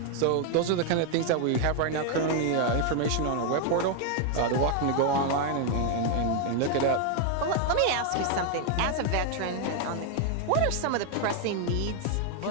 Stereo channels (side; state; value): both; different; correlation 0.01